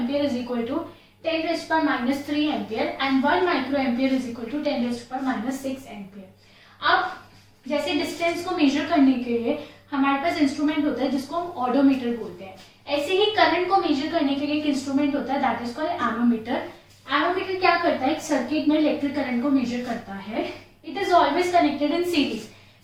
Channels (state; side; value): identical; both; correlation 1.00